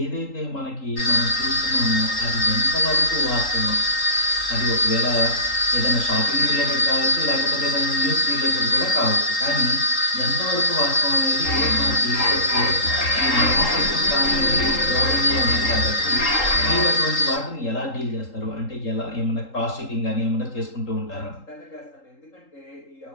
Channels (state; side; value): late; right; 3.8 ms